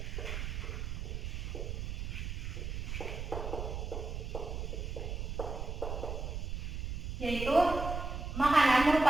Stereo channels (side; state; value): right; noise; rumble, 4 dB below the sound